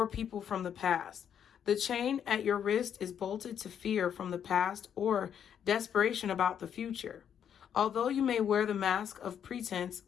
people from the past. The chain at your wrist is bolted to fear from the past or desperation about the future. Although you may wear the mask of pretense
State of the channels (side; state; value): right; quieter; 8.7 dB